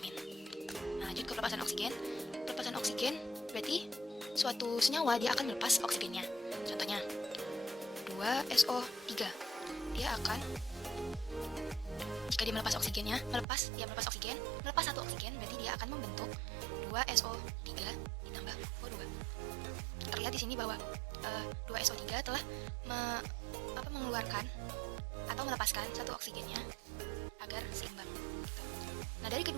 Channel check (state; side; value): drops out; left; at 13.5 s